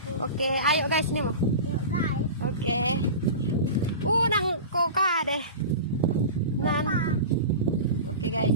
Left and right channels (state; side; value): inverted; both; correlation -0.31